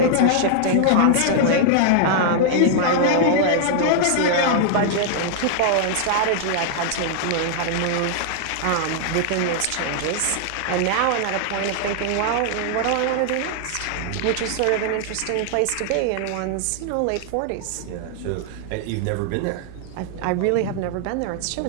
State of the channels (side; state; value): both; different; correlation -0.01